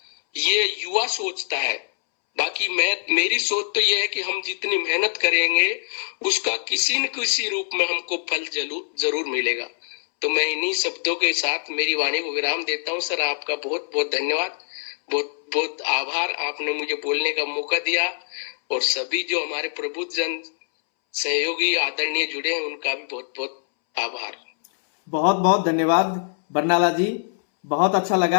ये युवा सोचता है। बाकी मेरी सोच तो ये है कि हम जितनी मेहनत करेंगे उसका किसी न किसी रूप में हमको फल जरूर मिलेगा। तो मैं इन्हीं शब्दों के साथ मेरी वाणी को विराम देता हूँ। सर आपका बहुत बहुत धन्यवाद, बहुत बहुत आभार, आपने मुझे बोलने का मौका दिया, और सभी जो हमारे प्रबुद्ध जन सहयोगी आदरणीय जुड़े हैं उनका भी बहुत बहुत आभार। बहुत बहुत धन्यवाद बरनाला जी, बहुत अच्छा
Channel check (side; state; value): right; silent; 63 dB below the other